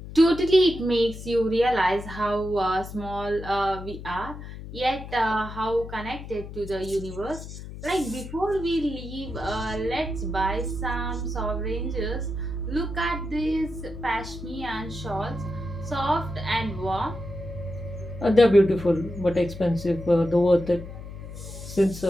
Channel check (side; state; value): left; noise; hum, 11 dB below the sound